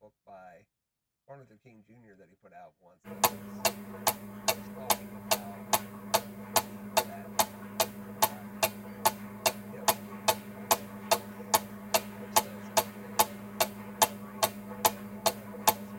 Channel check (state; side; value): identical; both; correlation 1.00